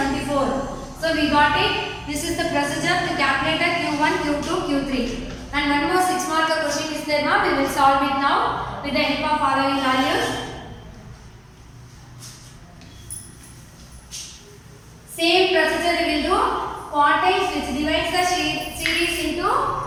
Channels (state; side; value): identical; both; correlation 1.00